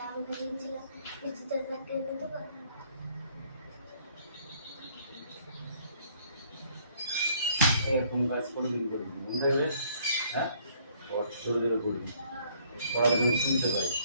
আমি বলেছিলাম বৃষ্টি তোর ব্যাগ কিনে দেবো। এরকম কাজ কোনোদিন করবি মনে থাকবে? হ্যাঁ, জোরে জোরে করবি, পড়াশোনা শুনতে পাই।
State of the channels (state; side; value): inverted; both; correlation -0.63